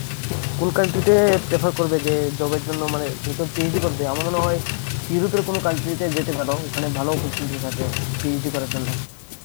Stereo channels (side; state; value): right; silent; digital silence